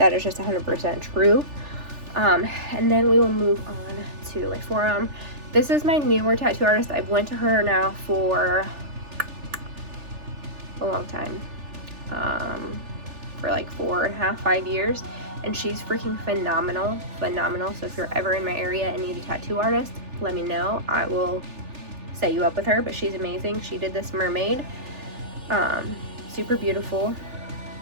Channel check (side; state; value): left; late; 3.4 ms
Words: is just 100% true. And then we will move on to my forearm. This is my newer tattoo artist. I've went to her now for a long time, for like 4.5, 5 years, and she's freaking phenomenal. So if you're ever in my area and need a tattoo artist, let me know. I will set you up with her, but she's amazing. She did this mermaid, Super beautiful.